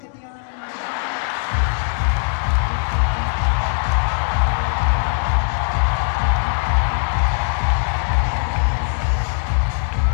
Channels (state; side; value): silent; right; 66 dB below the other